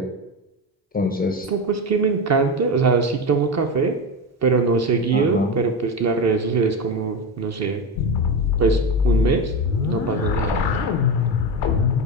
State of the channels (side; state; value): both; normal; correlation 0.18